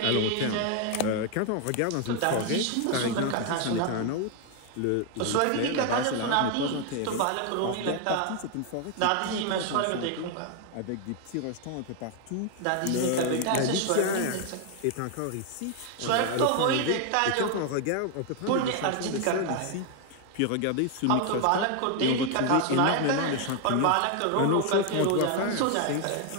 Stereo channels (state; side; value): different; both; correlation 0.01